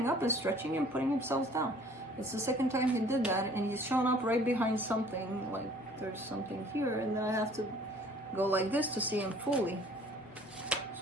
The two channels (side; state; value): both; normal; correlation 0.54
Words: up and stretching and putting himself down. It's the second time he did that, and he's shown up right behind something, like there's something here, and then I have to go like this to see him fully.